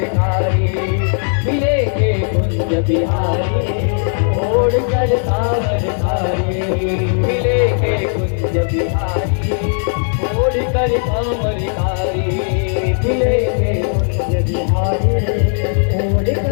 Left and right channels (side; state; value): right; silent; 57 dB below the other